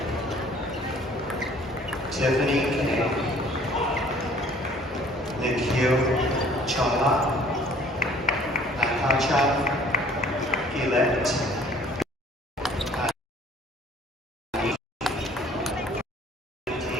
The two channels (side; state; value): both; normal; correlation 0.55